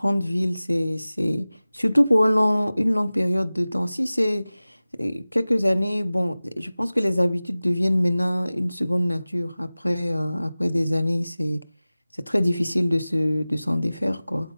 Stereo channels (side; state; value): both; inverted; correlation -0.98